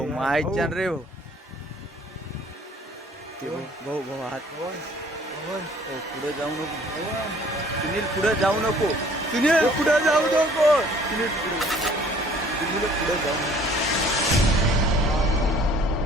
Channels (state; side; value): normal; both; correlation 0.55